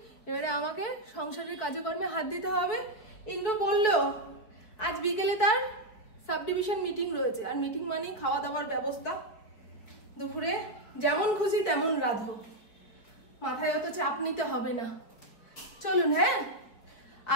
এবারে আমাকে সংসারের কাজকর্মে হাত দিতে হবে। ইন্দ্র বললো আজ বিকেলে তার সাব ডিভিশন মিটিং রয়েছে, আর মিটিং মানেই খাওয়া দাওয়ার ব্যবস্থা। দুপুরে যেমন খুশি তেমন রাঁধো, মাথায় অত চাপ নিতে হবে না। চলুন। হ্যাঁ,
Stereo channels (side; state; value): right; late; 4.8 ms